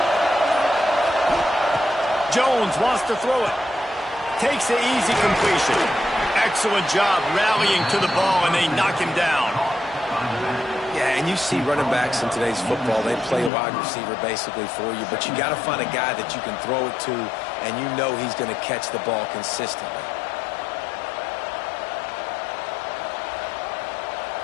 Jones wants to throw it. Takes the easy completion. Excellent job rallying to the ball, and they knock him down. Yeah, and you see running backs in today's football, they play wide receiver basically for you, but you got to find a guy that you can throw it to, and you know he's going to catch the ball consistently.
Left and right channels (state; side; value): drops out; right; at 13.5 s